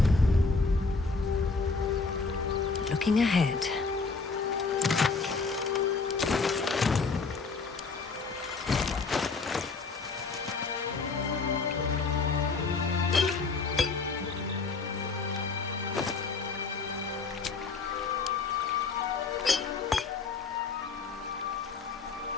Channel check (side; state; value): right; quieter; 4.4 dB